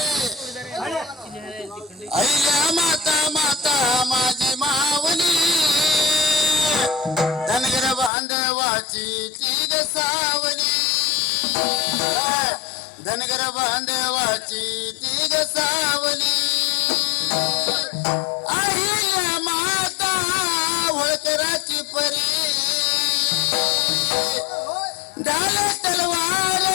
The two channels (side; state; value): right; drops out; at 8.1 s